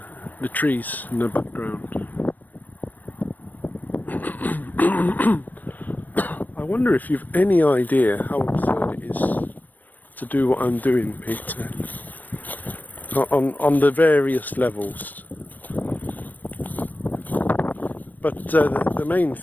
trees in the background. I wonder if you've any idea how absurd it is to do what I'm doing, Peter, on the various levels. But the main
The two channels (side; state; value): right; late; 0.086 ms